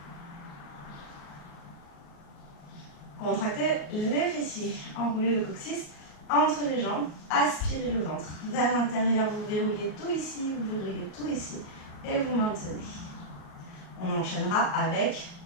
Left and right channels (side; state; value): right; late; 38 ms